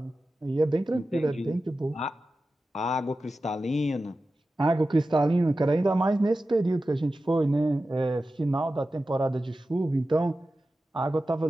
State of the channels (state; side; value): normal; both; correlation 0.93